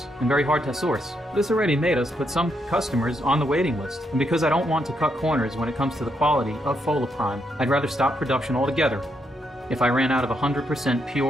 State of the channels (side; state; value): both; normal; correlation 0.78